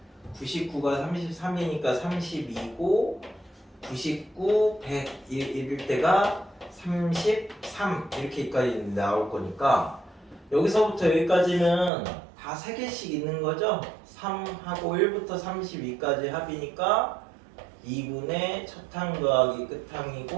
99가 33이니까 32고, 99, 100 이럴 때가 33 이렇게까지 나올 거니까, 여기서부터 여기까지는 다 3개씩 있는 거죠. 3하고 1부터 32까지 합이니까 2분의 첫항 더하기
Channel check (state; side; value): drops out; left; at 11.9 s